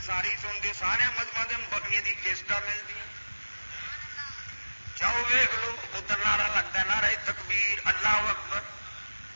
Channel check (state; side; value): inverted; both; correlation -1.00